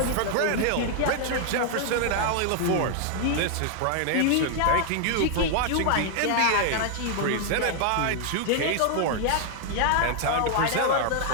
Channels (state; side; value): different; both; correlation 0.00